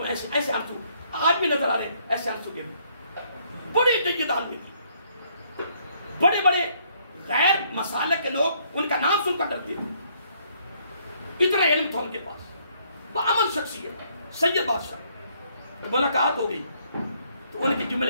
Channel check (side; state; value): both; inverted; correlation -0.68